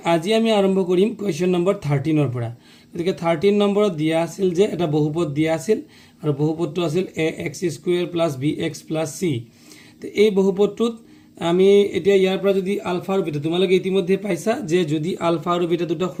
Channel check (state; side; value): identical; both; correlation 1.00